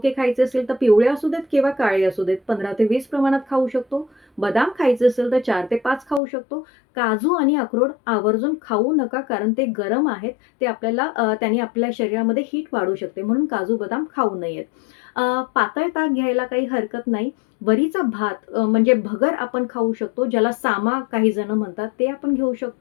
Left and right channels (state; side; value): drops out; right; at 6.2 s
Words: खायचे असेल तर पिवळे असू देत किंवा काळे असू देत 15 ते 20 प्रमाणात खाऊ शकतो. बदाम खायचे असेल तर 4 ते 5 खाऊ शकतो. काजू आणि अक्रोड आवर्जून खाऊ नका कारण ते गरम आहेत. ते आपल्याला त्याने आपल्या शरीरामध्ये हीट वाढू शकते म्हणून काजू, बदाम खाऊ नयेत. पातळ ताक घ्यायला काही हरकत नाही. वरीचा भात म्हणजे भगर आपण खाऊ शकतो, ज्याला सामा काही जण म्हणतात, ते आपण घेऊ